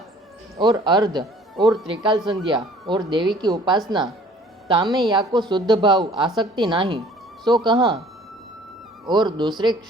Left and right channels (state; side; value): normal; both; correlation 0.53